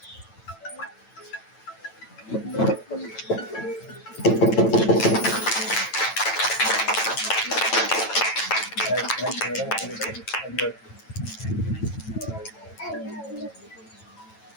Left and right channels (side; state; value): right; late; 9.0 ms